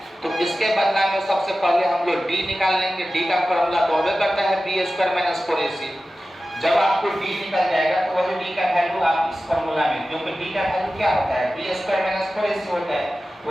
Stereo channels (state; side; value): normal; both; correlation 0.95